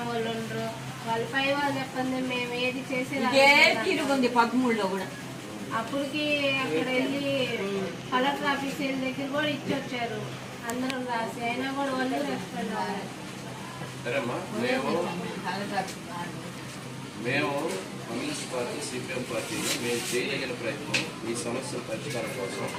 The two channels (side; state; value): both; identical; correlation 1.00